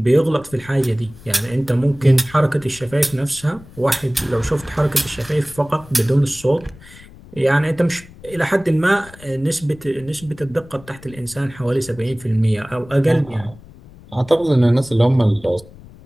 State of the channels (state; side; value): noise; left; rumble, 21 dB below the sound